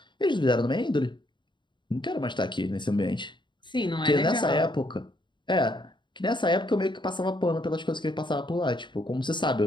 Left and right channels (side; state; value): right; late; 0.23 ms